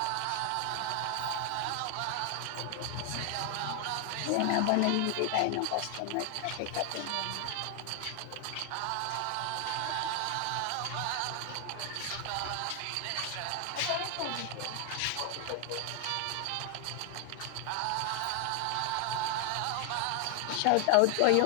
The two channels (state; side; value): different; both; correlation 0.00